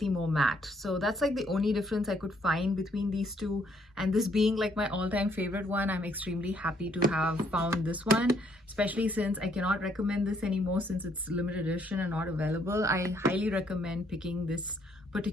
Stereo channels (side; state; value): both; normal; correlation 0.68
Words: more matte. So that's like the only difference I could find between these two. And this being like my all-time favorite one, I'm extremely happy to have found this one, especially since I cannot recommend this anymore since it's limited edition and not available. I highly recommend picking this